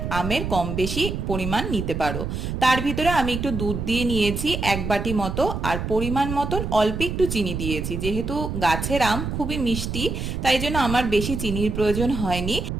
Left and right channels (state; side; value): noise; right; rumble, 4 dB below the sound